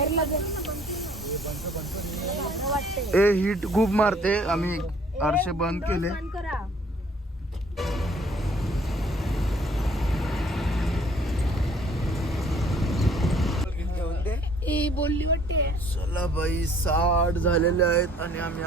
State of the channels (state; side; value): normal; both; correlation 0.58